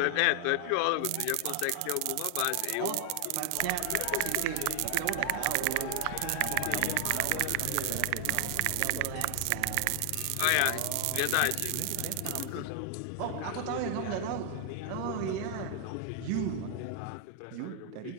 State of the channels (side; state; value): both; different; correlation 0.00